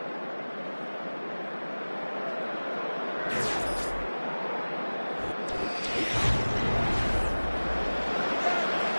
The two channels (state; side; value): inverted; both; correlation -1.00